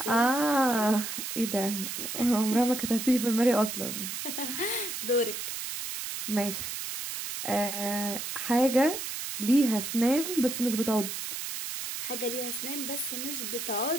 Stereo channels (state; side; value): noise; right; hiss, 5 dB below the sound